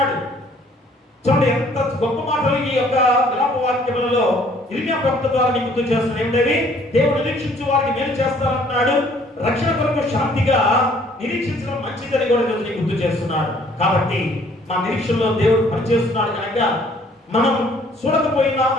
చూడండి ఎంత గొప్ప మాటలు ఈ యొక్క విలాప వాక్యములలో ఇర్మియా ప్రవక్త ద్వారా గుర్తు చేస్తున్నాడు. ఏమిటవి? దేవుడు నిరీక్షించు వారికి మేలు చేస్తారంటున్నాడు. రక్షణ కొరకు శాంతిగా నిరీక్షించడం మంచిదని కూడా ఈరోజు గుర్తు చేస్తున్నాడు. కాబట్టి మా నిరీక్షణలో దేవుడు పనిచేస్తున్నాడు కనుక మనం చూడకపోయినా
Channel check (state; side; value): normal; both; correlation 0.59